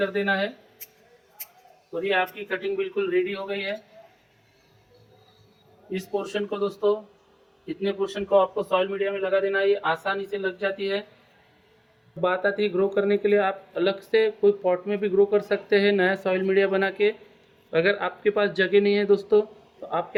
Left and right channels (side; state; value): both; identical; correlation 1.00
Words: देना है और ये आपकी कटिंग बिल्कुल रेडी हो गई है। इस पोर्शन को दोस्तों इतने पोर्शन को आपको सॉइल मीडिया में लगा देना है, ये आसानी से लग जाती है। बात आती है ग्रो करने के लिए, आप अलग से कोई पॉट में भी ग्रो कर सकते हैं नया सॉइल मीडिया बना के। अगर आपके पास जगह नहीं है दोस्तों, तो आप